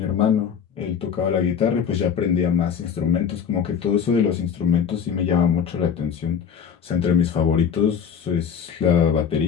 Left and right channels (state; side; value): quieter; right; 7.5 dB